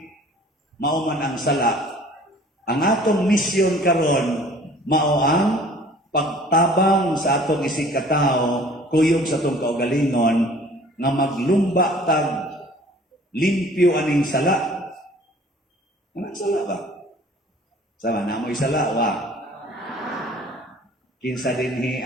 mao man ang sala. Ang atong misyon karon mao ang pagtabang sa atong isig katao, kuyog sa atong kaugalingon nga maglumba tag limpyo aning sala. Anong sala ba? Sama na mo'y sala wa. Kinsa dinhi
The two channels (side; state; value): both; normal; correlation 0.50